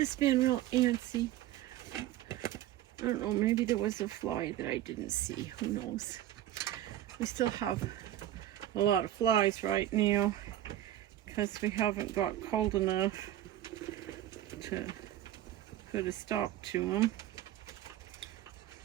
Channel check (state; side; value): quieter; left; 13.0 dB